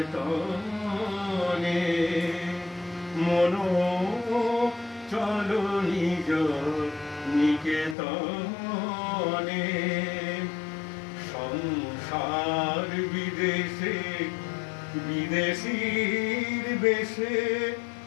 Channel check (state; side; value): drops out; right; at 8.0 s